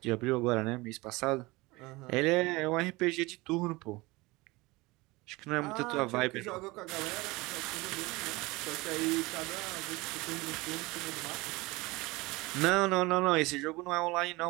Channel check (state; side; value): quieter; left; 22.5 dB